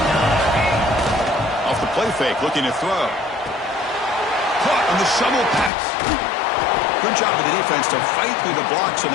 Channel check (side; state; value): right; drops out; at 5.7 s